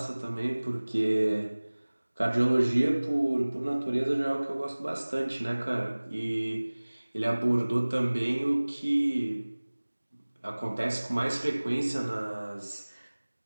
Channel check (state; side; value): inverted; both; correlation -1.00